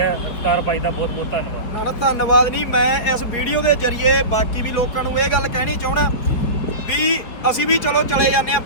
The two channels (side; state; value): right; late; 4.8 ms